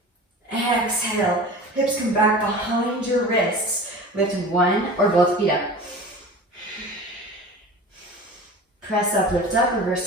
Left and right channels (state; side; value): normal; both; correlation 0.36